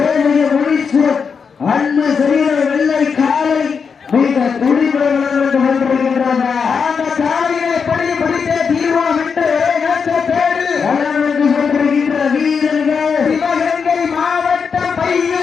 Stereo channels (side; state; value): right; quieter; 5.9 dB